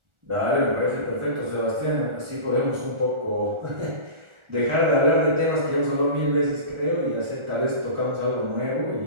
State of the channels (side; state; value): left; late; 1.4 ms